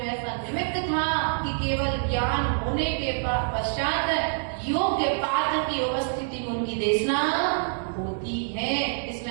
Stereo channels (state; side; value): silent; left; digital silence